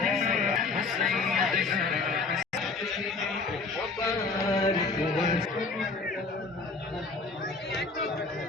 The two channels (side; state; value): right; quieter; 4.0 dB